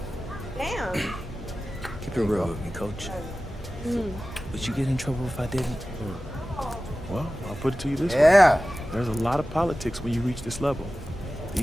Damn. Keep it real with me, Coach. Would you get in trouble if I didn't? Well, I'll put it to you this way. Yeah. There's a lot of politics when you reach this level.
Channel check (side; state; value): both; normal; correlation 0.95